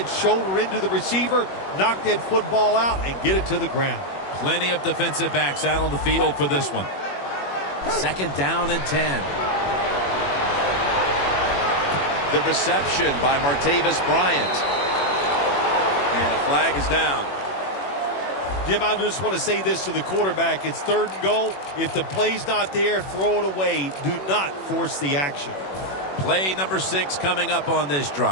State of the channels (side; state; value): right; late; 21 ms